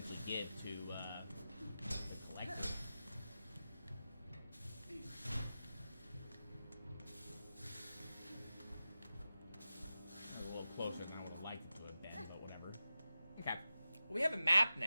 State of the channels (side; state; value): both; inverted; correlation -0.93